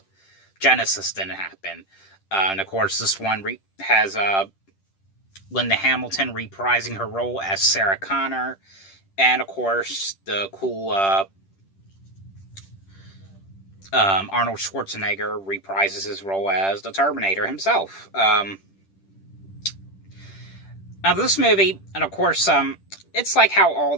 Genesis didn't happen. And of course, this one has Linda Hamilton reprising her role as Sarah Connor, and of course the cool Arnold Schwarzenegger reprises his role as the Terminator himself. Now this movie, and of course, it's like how all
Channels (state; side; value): late; right; 10 ms